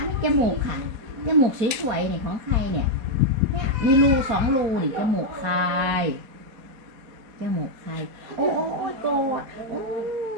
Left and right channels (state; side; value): late; left; 4.4 ms